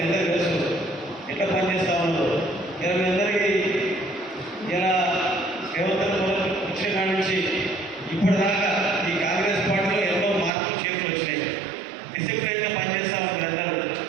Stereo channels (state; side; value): drops out; left; at 10.5 s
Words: అందరికీ తెలుసు ఎట్లా పనిచేస్తా ఉన్నారు. ఇలా మీ అందరికీ ఇలా రేవంత్ వచ్చిన కాడి నుంచి ఇప్పటిదాకా ఈ కాంగ్రెస్ పార్టీలో ఎన్నో మార్పులు చేతులు వచ్చినాయి. డిసిప్లైన్గా పనిచేస్తా ఉన్నారు అందరూ.